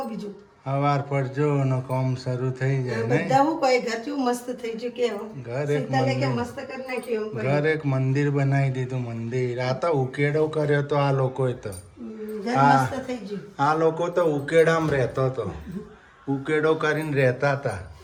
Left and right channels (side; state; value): both; identical; correlation 1.00